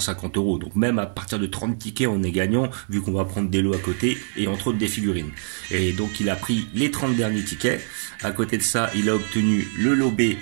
€. Donc même à partir de 30 tickets, on est gagnant, vu qu'on va prendre des lots à côté et entre autres des figurines. Et donc il a pris les 30 derniers tickets. À côté de ça, il a obtenu le lot B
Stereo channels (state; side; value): silent; left; 63 dB below the other